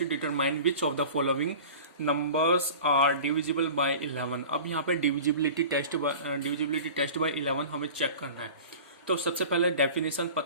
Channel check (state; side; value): inverted; both; correlation -0.39